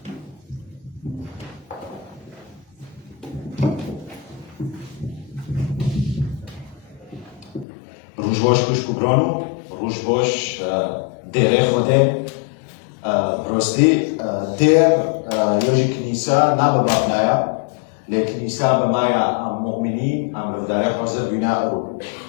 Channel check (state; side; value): drops out; right; at 7.7 s